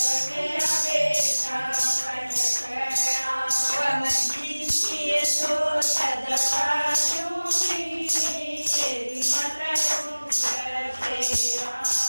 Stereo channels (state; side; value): inverted; both; correlation -1.00